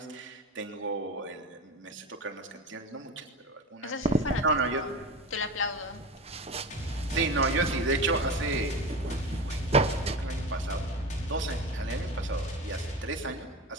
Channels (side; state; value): both; normal; correlation 0.27